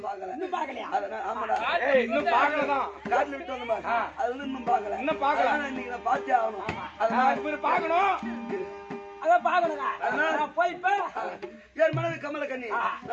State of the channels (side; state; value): both; identical; correlation 1.00